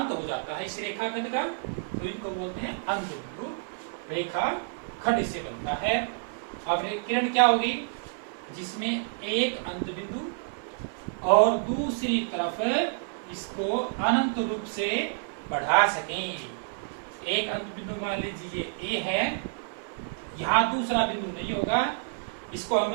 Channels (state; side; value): silent; left; 59 dB below the other